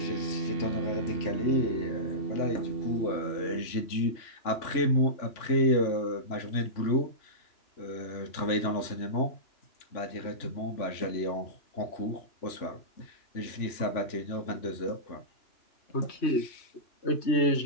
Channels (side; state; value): right; late; 3.4 ms